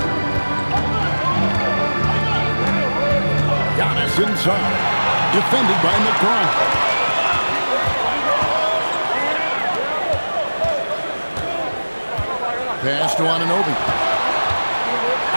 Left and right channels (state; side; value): inverted; both; correlation -1.00